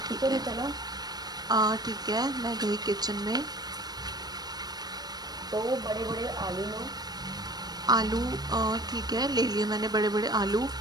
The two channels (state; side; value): late; left; 0.19 ms